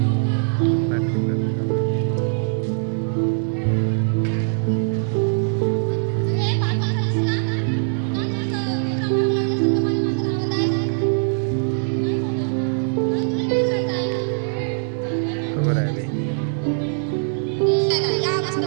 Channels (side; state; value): left; silent; digital silence